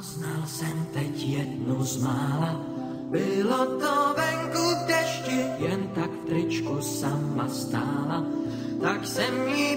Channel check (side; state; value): both; identical; correlation 1.00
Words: jsem teď jednu z mála, bylo to venku v dešti, jen tak v tričku sama stála. Tak jsem jí